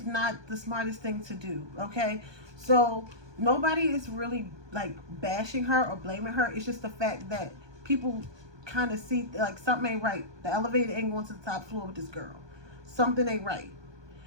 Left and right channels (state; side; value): late; left; 1.2 ms